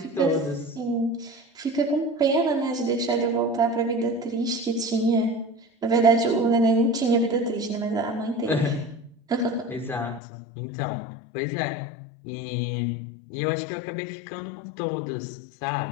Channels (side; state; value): right; drops out; at 10.2 s